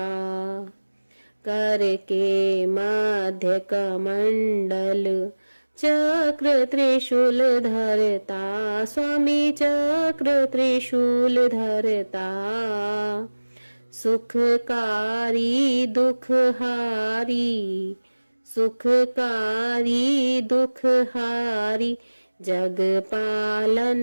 कर के मध्य कमंडल, चक्र त्रिशूल धरता, स्वामी चक्र त्रिशूल धरता। सुखकारी दुखहारी, सुखकारी दुखहारी, जग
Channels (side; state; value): both; inverted; correlation -1.00